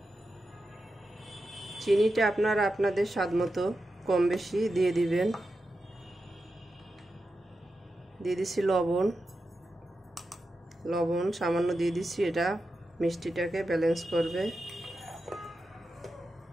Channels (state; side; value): normal; both; correlation 0.90